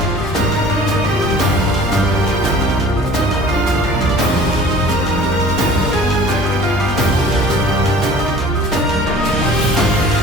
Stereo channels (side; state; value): both; normal; correlation 0.47